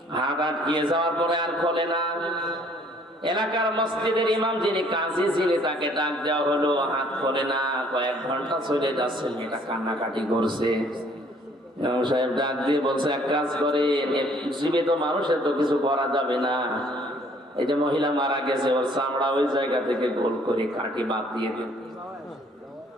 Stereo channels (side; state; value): both; normal; correlation 0.60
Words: যাওয়ার পরে আর খোলে না। এলাকার মসজিদের ইমাম যিনি কাজী ছিলেন তাকে ডাক দেওয়া হলো, হাত খোলে না। কয়েক ঘন্টা চলে যাচ্ছে, মেয়েটা কান্নাকাটি করছে। ইমাম সাহেব ডাক দিয়ে বলছে, এক কাজ করে, জীবিত মানুষের তো কিছু করা যাবে না, এই যে মহিলা মারা গেছে ওর চামড়া ওই জায়গা থেকে গোল করে কাটি বাদ দিয়ে দিন।